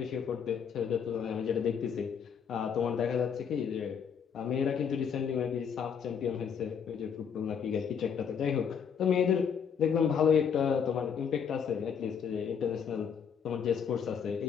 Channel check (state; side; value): quieter; right; 7.2 dB